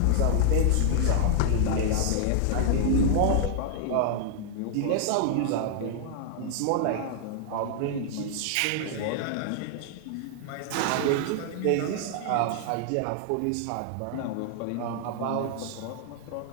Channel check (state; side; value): different; both; correlation 0.00